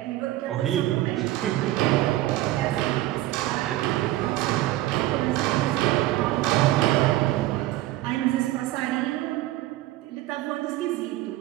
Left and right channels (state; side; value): quieter; left; 16.0 dB